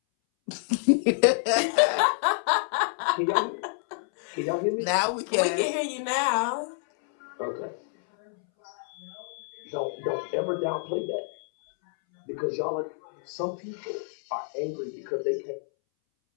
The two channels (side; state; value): right; silent; 59 dB below the other